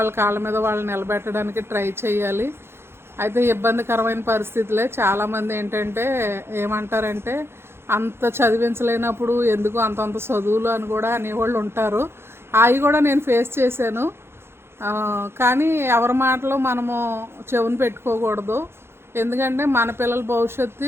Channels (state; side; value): late; left; 0.12 ms